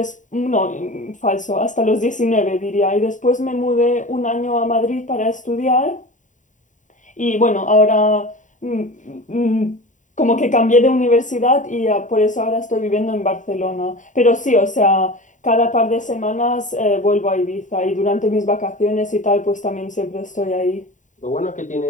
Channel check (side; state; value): right; late; 0.36 ms